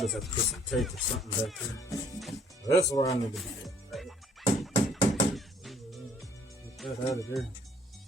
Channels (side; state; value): both; normal; correlation 0.60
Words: just have to put some tape or something back here. That's where I need to be at. Get that out of there.